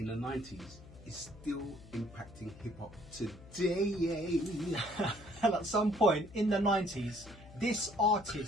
the 90s is still impacting hip-hop today. And at some point in the 90s, this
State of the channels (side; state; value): left; noise; hum, 19 dB below the sound